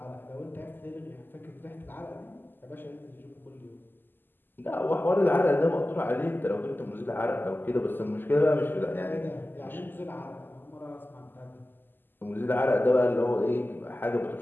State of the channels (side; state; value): right; late; 0.092 ms